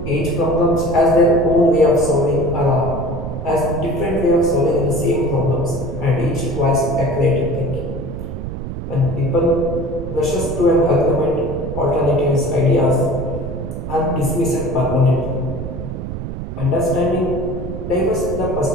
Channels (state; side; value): noise; right; rumble, 7 dB below the sound